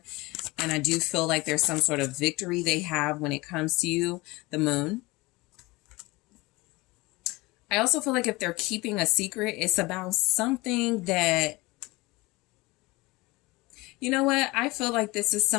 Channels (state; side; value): quieter; right; 22.7 dB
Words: And I do feel like there's some sort of victory they have when it comes to you, the Moon. I also feel like if they're keeping a secret, it's about something that, you know what? I feel like this is